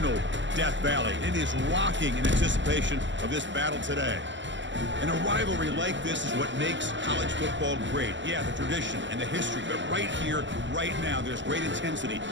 Death Valley. It is rocking in anticipation of this battle today. And a rivalry like this is what makes college football great. Yeah, the tradition and the history, but right here, right now, there's great intensity.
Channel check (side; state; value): left; late; 0.54 ms